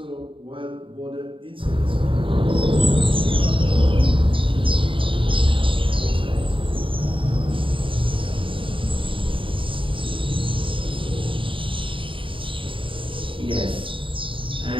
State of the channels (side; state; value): left; late; 0.25 ms